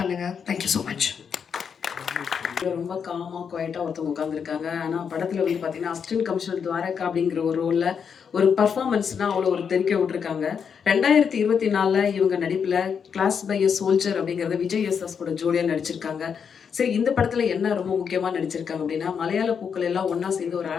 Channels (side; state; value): right; quieter; 6.8 dB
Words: பண்ணுங்கள். Thank you so much. ரொம்ப காமாக குவைட்டாக ஒருத்தவங்க உட்காந்துருக்காங்க. ஆனால் படத்தில் வந்து பார்த்தீங்கன்னா அசிஸ்டன்ட் கமிஷனர் துவாரகா அப்படிங்கிற ஒரு ரோலில் ஒரு பர்ஃபார்மன்ஸ்னால் அவ்வளோ ஒரு தெரிக்க விட்டுருக்காங்க. 2024 இவங்க நடிப்பில் கிளாஸ் பை எ சோல்ஜர் அப்படிங்கிறத விஜய் எஸ்எஸ் கூட ஜோடியாக நடிச்சிருக்காங்க. சரி, இந்த படத்தில் என்ன ரொம்ப முக்கியமாக நடிச்சிருக்காங்க அப்படின்னா, மலையாள பூக்கள் எல்லாம் ஒன்றா சேர்ந்து ஒரு